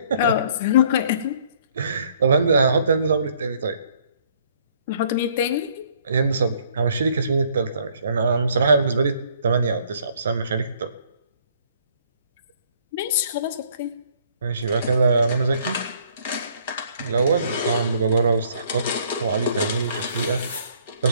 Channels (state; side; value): inverted; both; correlation -0.62